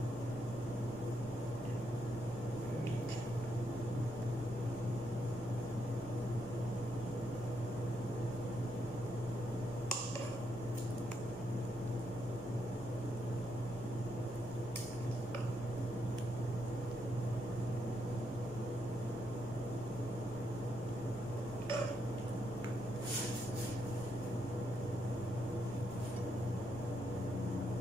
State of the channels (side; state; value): both; normal; correlation 0.79